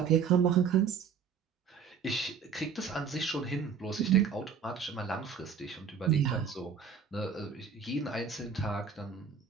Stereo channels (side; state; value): left; quieter; 6.6 dB